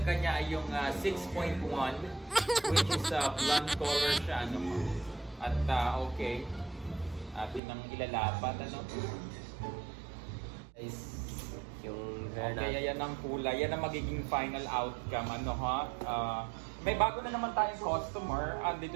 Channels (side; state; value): left; drops out; at 7.6 s